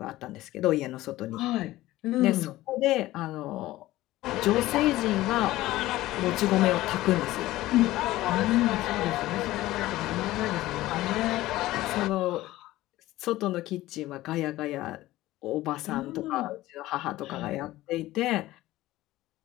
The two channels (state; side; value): quieter; right; 16.7 dB